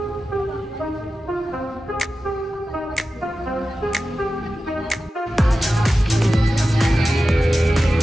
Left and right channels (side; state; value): both; normal; correlation 0.93